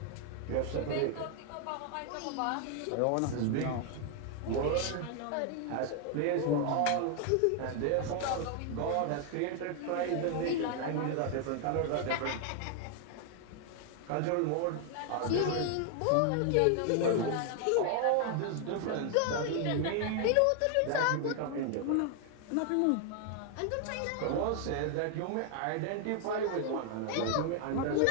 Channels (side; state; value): both; different; correlation 0.00